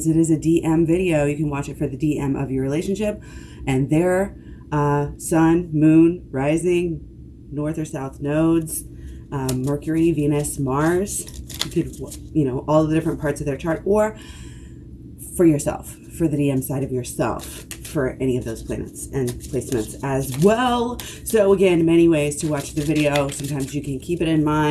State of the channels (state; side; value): identical; both; correlation 1.00